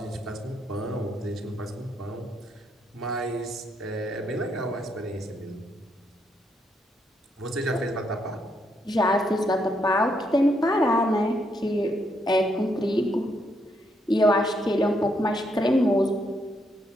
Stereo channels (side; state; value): both; normal; correlation 0.76